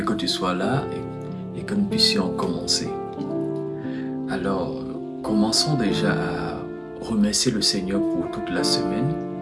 que tu sois là et que nous puissions commencer. Alors, commençons déjà à remercier le Seigneur pour toute la semaine.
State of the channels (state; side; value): identical; both; correlation 1.00